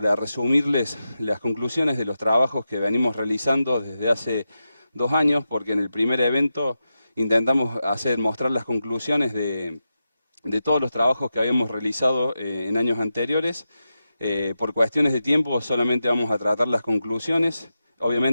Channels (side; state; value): both; inverted; correlation -0.89